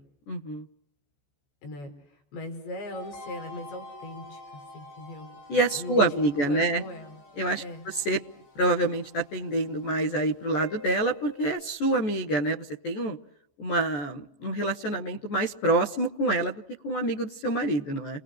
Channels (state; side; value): late; right; 14 ms